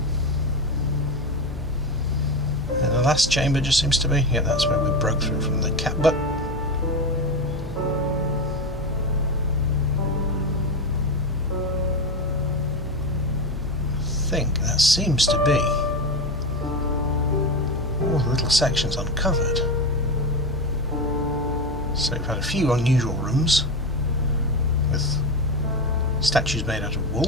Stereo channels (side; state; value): both; normal; correlation 0.18